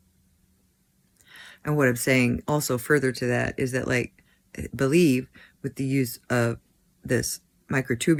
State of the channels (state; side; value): identical; both; correlation 1.00